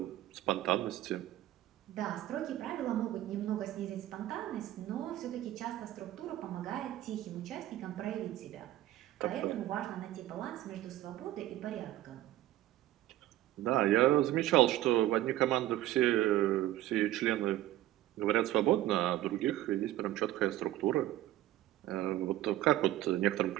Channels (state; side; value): quieter; left; 14.6 dB